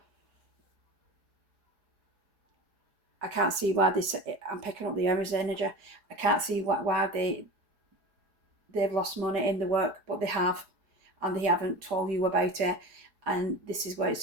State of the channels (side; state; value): left; late; 4.8 ms